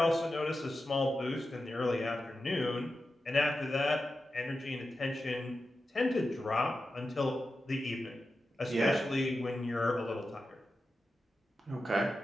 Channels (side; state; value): both; normal; correlation 0.91